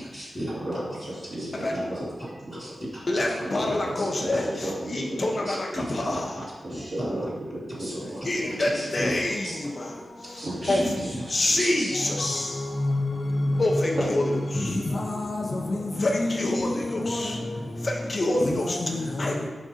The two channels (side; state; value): both; normal; correlation 0.94